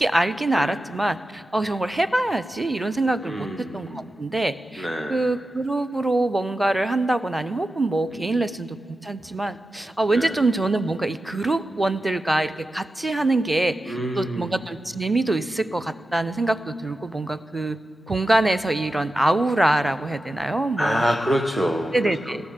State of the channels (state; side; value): normal; both; correlation 0.92